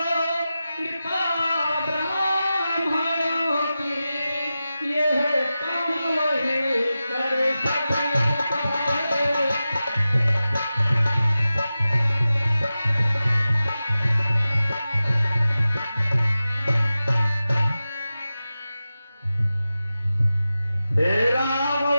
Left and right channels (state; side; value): inverted; both; correlation -0.94